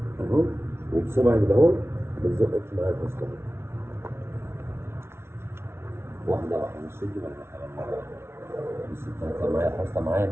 اهو، وبصبعك ده اهو بتزقك معايا الفصل واحده واحده، مش شدي بالراحه. بس طلعت معايا الحصلة معايا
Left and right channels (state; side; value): late; left; 0.12 ms